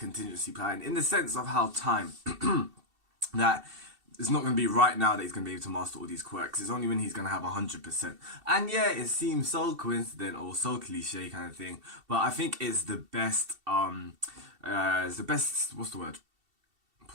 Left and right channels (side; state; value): left; late; 2.7 ms